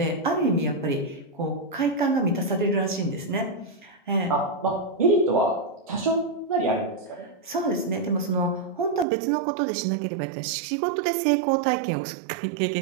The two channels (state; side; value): drops out; left; at 9.1 s